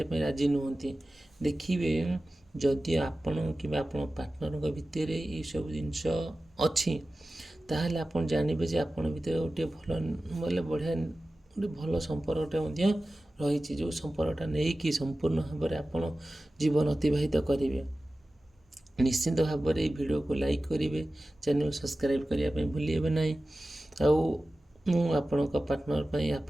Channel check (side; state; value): both; normal; correlation 0.96